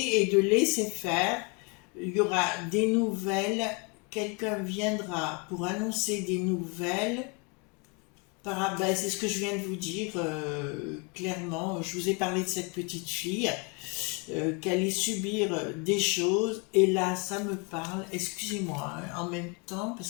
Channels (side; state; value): right; quieter; 32.5 dB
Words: et de laisser faire, il y aura des nouvelles, quelqu'un viendra pour annoncer des nouvelles. Ben, c'est ce que je viens de vous dire clairement. Je vous ai parlé de cette petite fille qui allait subir des choses, et là ça me parle, excusez-moi, hein, en même temps